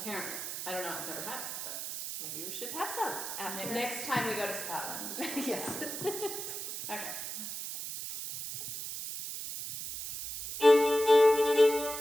I don't know, I've never had it, but Maybe we should have some after. next time we go to Scotland. Yes. Okay.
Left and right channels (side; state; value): right; noise; hiss, 6 dB below the sound